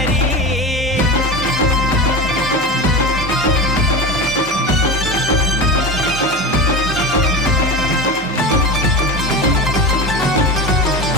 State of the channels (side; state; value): both; normal; correlation 0.25